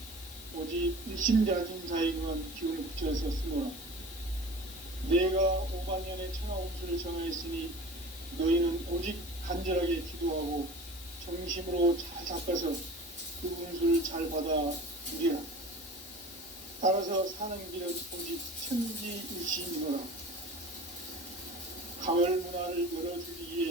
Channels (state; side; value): noise; left; hiss, 15 dB below the sound